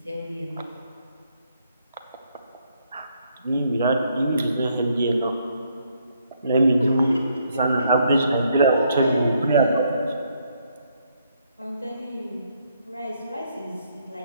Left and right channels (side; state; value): both; inverted; correlation -0.73